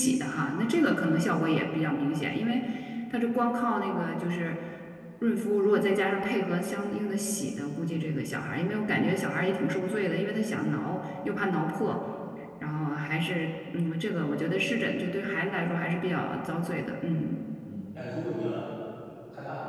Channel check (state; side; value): identical; both; correlation 1.00